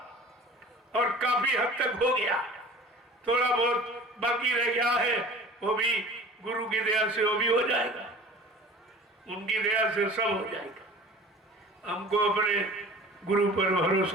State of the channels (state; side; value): normal; both; correlation 0.42